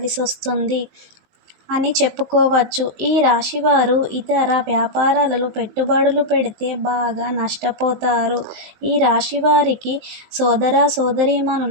అని చెప్పుకోవచ్చు. ఈ రాశివారు ఇతర వ్యాపారాలలో పెట్టుబడులు పెడితే బాగా నష్టపోతారు. ఈ రాశివారికి సోదర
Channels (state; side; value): late; left; 19 ms